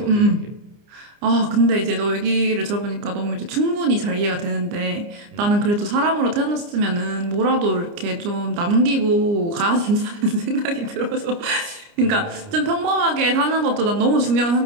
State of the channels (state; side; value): late; left; 29 ms